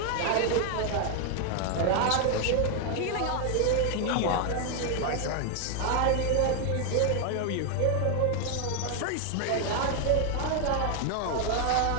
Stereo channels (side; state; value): both; different; correlation 0.00